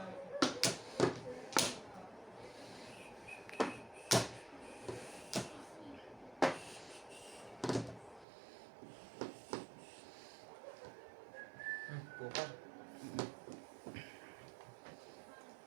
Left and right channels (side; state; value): left; drops out; at 8.2 s